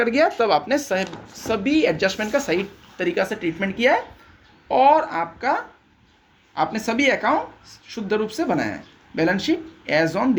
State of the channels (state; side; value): identical; both; correlation 1.00